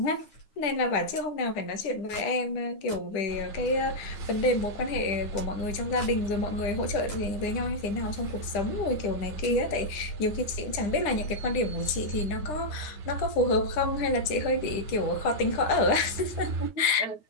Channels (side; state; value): right; late; 10 ms